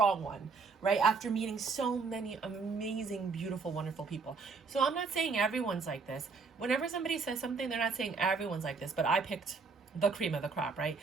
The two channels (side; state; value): left; quieter; 4.7 dB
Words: one, right? After meeting so many amazing, beautiful, wonderful people. So I'm not saying everyone's like this. Whenever somebody says something, they're not saying everyone's like this, but I picked the cream of the crop, right?